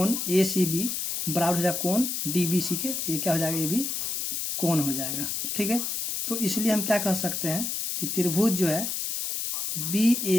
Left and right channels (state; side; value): noise; left; hiss, 2 dB below the sound